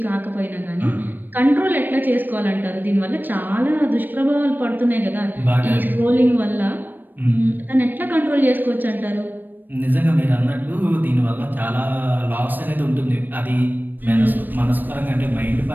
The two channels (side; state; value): left; late; 0.091 ms